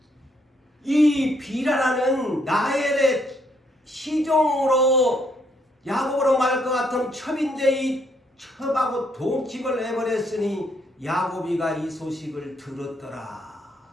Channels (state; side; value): normal; both; correlation 0.72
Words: 이 비라라는 나엘의 시종으로 야곱으로 말할 것 같은 첩인데 이 첩하고 동침을 해버렸으니 야곱이가 이 소식을 들었더라.